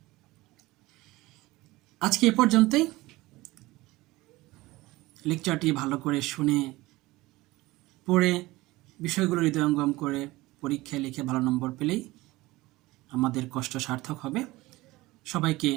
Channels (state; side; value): quieter; left; 19.7 dB